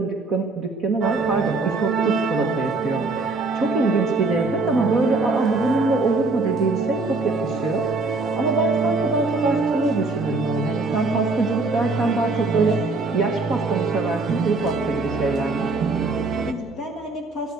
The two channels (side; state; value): left; quieter; 3.5 dB